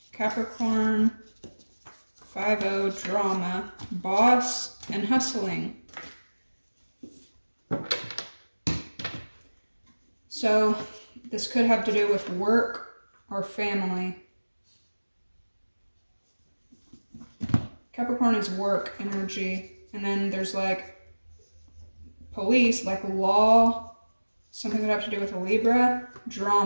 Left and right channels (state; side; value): inverted; both; correlation -1.00